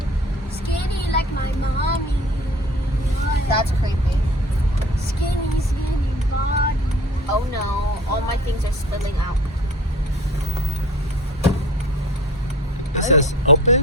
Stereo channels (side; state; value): both; normal; correlation 0.46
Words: Skinny like my mommy. That's creepy. Skinny, skinny body. Oh no, all my things are spilling out. It says